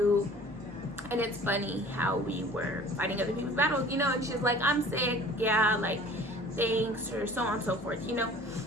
And it's funny how we were fighting other people's battles, you know. And she's like, I'm sick. Yeah, like, thanks, or so on and so forth, you know.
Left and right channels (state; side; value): normal; both; correlation 0.47